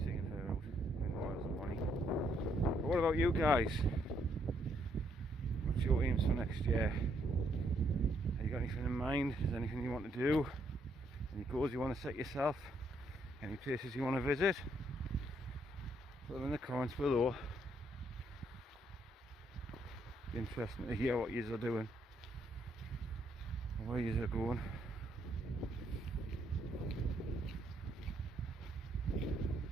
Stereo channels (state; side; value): normal; both; correlation 0.73